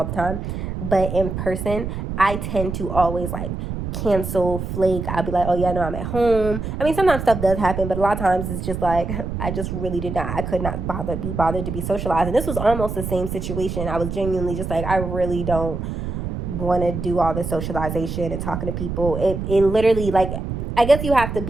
the time. But in person, I tend to always, like, cancel, flake. I'll be like, oh yeah, no, I'm at home. I mean, sometimes stuff does happen, but a lot of times it's just like, I just really I could not be bothered to be socialized. And this was almost the same situation. I was genuinely just like, I really don't want to do all this socialization and talking to people. It literally, like, I guess you have to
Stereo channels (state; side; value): noise; right; rumble, 5 dB below the sound